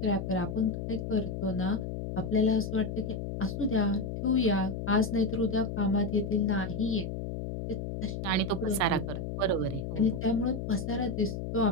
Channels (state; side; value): noise; left; hum, 5 dB below the sound